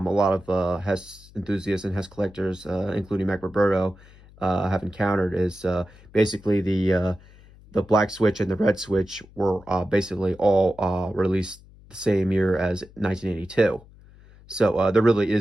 of Hess enthusiasts and Hess collectors, including Mac Roberto, have encountered is basically the black switch and the red switch were basically all released the same year as 1982. So there really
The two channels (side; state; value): left; noise; hum, 24 dB below the sound